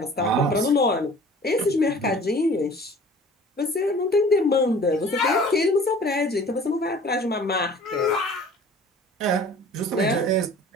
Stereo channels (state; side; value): normal; both; correlation 0.47